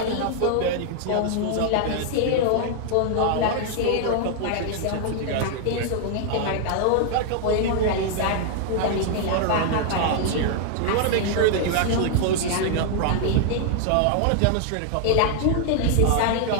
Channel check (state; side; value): different; both; correlation 0.00